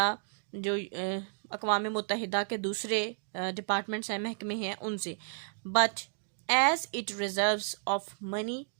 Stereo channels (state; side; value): silent; left; 56 dB below the other